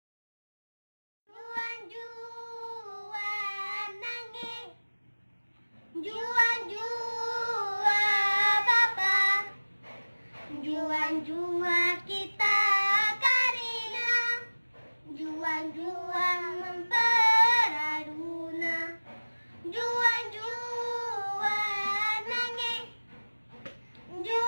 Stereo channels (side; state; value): both; inverted; correlation -1.00